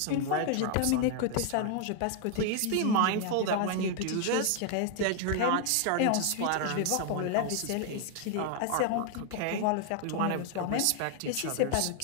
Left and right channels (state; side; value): different; both; correlation 0.00